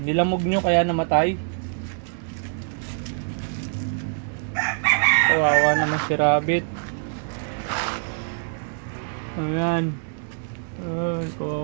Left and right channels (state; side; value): silent; left; digital silence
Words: nyo kaya namatay. Kawawa naman si Rabbit. Ayan. Ay,